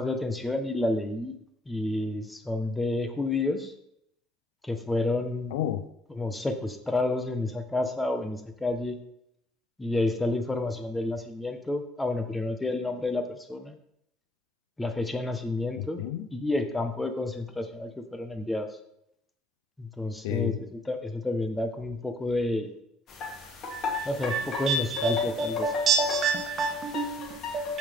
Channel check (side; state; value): both; normal; correlation 0.65